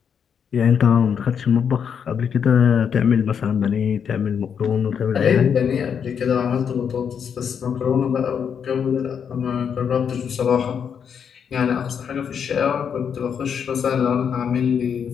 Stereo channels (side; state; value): right; quieter; 7.4 dB